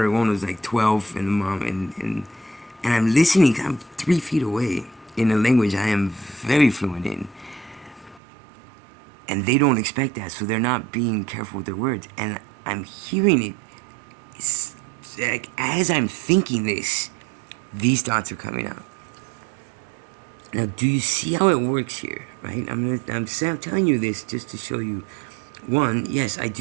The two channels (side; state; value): left; drops out; at 8.2 s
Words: one was like 12, and the mom, and I'm listening, 'cause I'm 3 feet away in a language I am very fluent in. And they don't expect that, so they're not being careful with their words. And I'm hearing it. It's like, as I'm thinking this, these thoughts are coming out. Now, do you see how it works here, right? I'm telling you this just to show you. One, yes, I